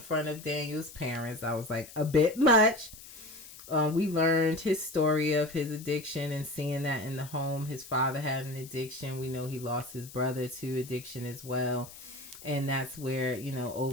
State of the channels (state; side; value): noise; left; hiss, 17 dB below the sound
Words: of Daniel's parents. I was like, a bit much. We learned his story of his addiction and seeing that in the home. His father had an addiction. We know he lost his brother to addiction as well. And that's where, you know,